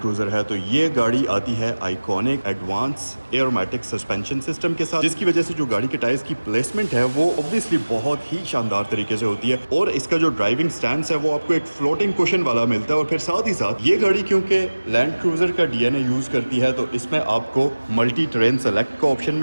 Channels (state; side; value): inverted; both; correlation -1.00